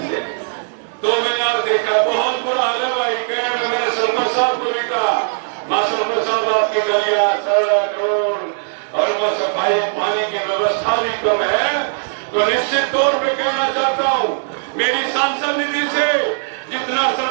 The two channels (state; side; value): silent; left; digital silence